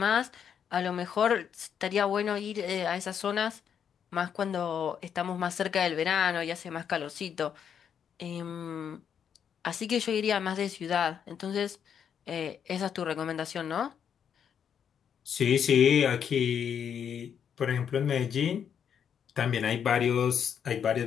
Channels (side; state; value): right; quieter; 8.0 dB